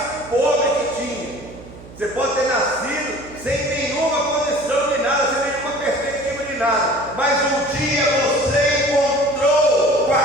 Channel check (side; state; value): right; noise; hum, 18 dB below the sound